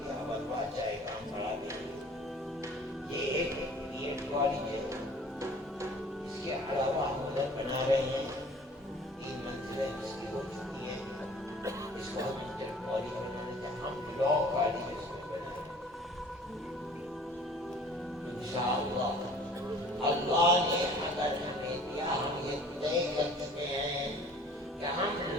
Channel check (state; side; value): normal; both; correlation 0.49